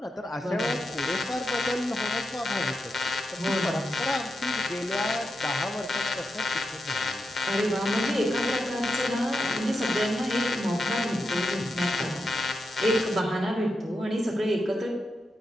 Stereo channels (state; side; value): normal; both; correlation 0.86